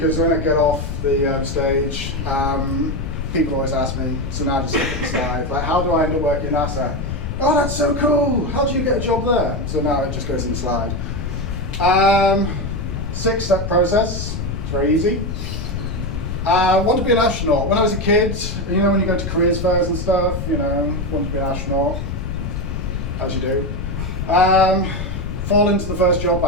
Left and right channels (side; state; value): left; noise; rumble, 4 dB below the sound